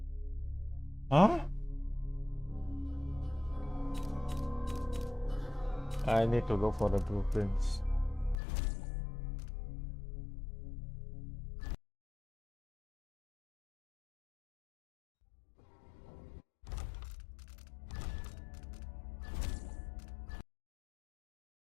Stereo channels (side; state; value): right; drops out; at 8.3 s